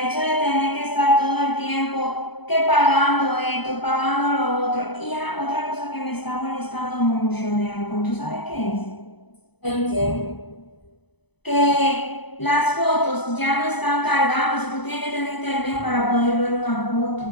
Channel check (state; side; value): late; right; 0.99 ms